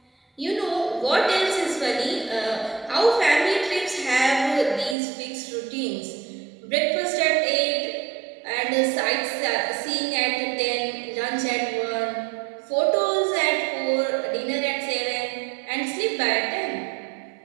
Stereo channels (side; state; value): left; drops out; at 5.0 s